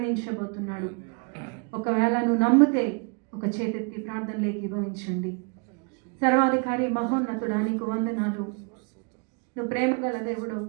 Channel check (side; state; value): left; quieter; 36.1 dB